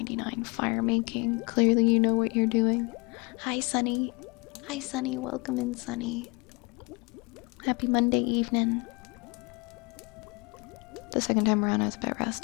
fire making. Clearly you know what you're doing. Hi Sunny. Hi Sunny, welcome in Sunny. Happy Monday evening. The second time around I was a bit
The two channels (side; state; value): right; quieter; 29.0 dB